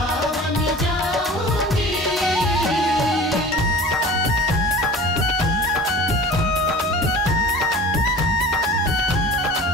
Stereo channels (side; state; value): both; normal; correlation 0.40